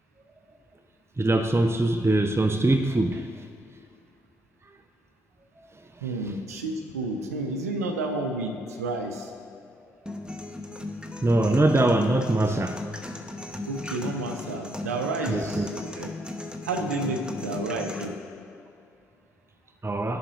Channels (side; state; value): both; normal; correlation 0.73